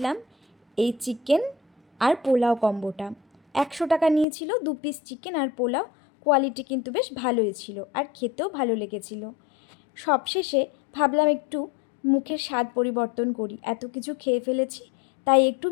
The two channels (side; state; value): right; drops out; at 4.2 s